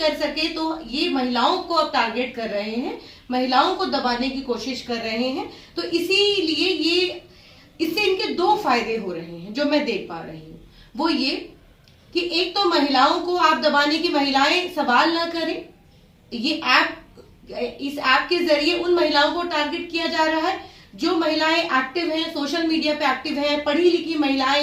सके तो ये महिलाओं को अब टारगेट कर रहे हैं, महिलाओं को दबाने की कोशिश कर रहे हैं। तो इसीलिए ये इससे इनके 2 फायदे हो रहे हैं जो मैं देख पा रही हूँ। वो ये कि एक तो महिलाओं को आप दबाने की, महिलाएं सवाल ना करें। ये ऐप, इस ऐप के जरिए उन महिलाओं को टारगेट किया जा रहा है जो महिलाएं एक्टिव हैं, सोशल मीडिया पे एक्टिव हैं, पढ़ी लिखी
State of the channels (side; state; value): both; identical; correlation 1.00